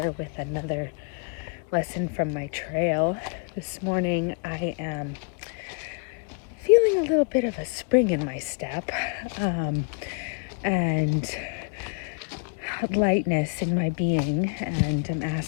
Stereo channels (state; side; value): quieter; right; 36.8 dB